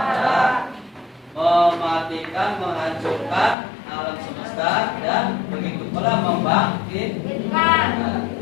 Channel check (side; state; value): right; drops out; at 3.6 s